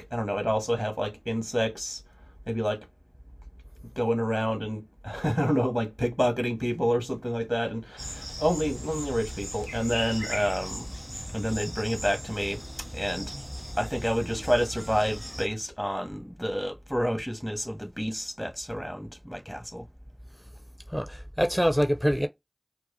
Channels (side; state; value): both; identical; correlation 1.00